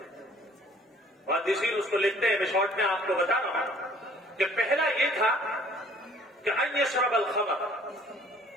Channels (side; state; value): both; normal; correlation 0.56